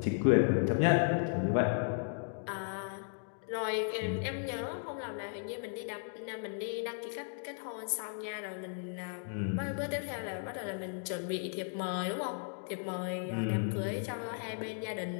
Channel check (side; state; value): right; silent; digital silence